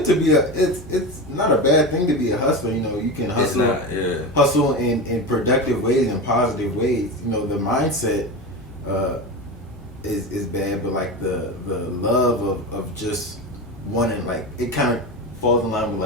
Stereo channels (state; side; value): normal; both; correlation 0.22